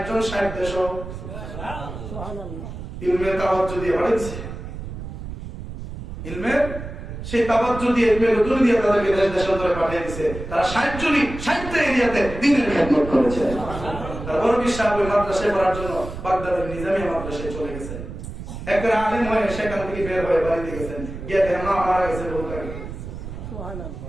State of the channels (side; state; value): right; noise; rumble, 9 dB below the sound